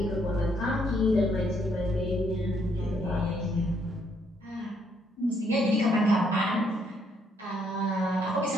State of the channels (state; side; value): normal; both; correlation 0.71